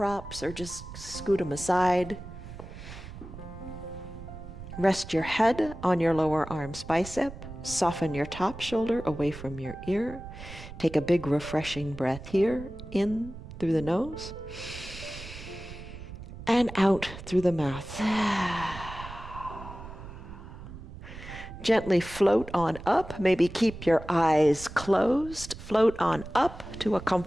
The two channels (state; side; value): noise; right; rumble, 13 dB below the sound